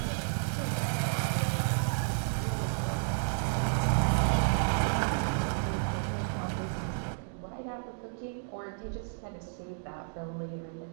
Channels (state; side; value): silent; left; digital silence